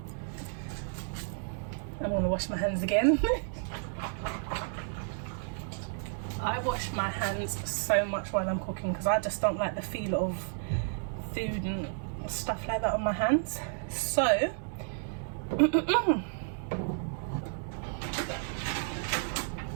I'm gonna wash my hands again. I wash my hands so much while I'm cooking because I just don't like the feel of food and stuff like that on my hands. So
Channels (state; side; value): silent; left; digital silence